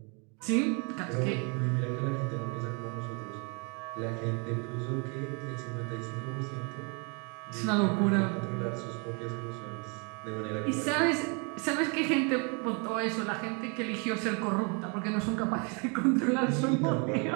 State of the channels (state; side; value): quieter; left; 34.5 dB